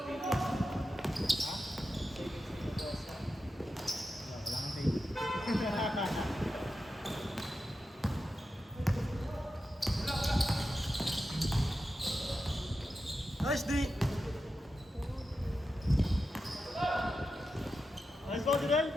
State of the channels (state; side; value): normal; both; correlation 0.90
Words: Nice D! Nice ball, Direl!